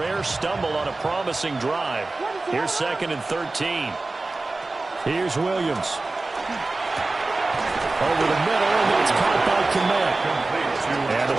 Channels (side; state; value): left; quieter; 3.3 dB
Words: stumble on a promising drive. Here's 2nd and 13. Here's Williams. Over the middle, and it's caught by Kmet. And the